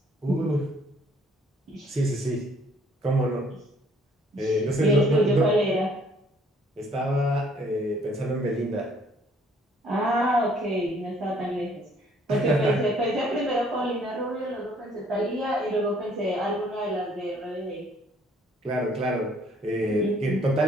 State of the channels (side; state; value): both; normal; correlation 0.61